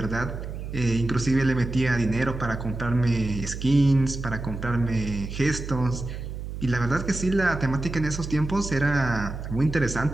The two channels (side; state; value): right; noise; hum, 8 dB below the sound